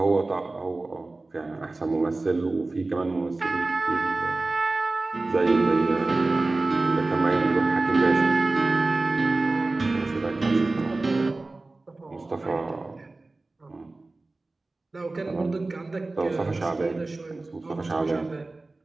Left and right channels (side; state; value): left; quieter; 3.2 dB